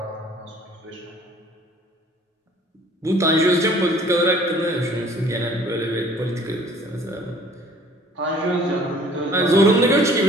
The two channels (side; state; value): both; normal; correlation 0.53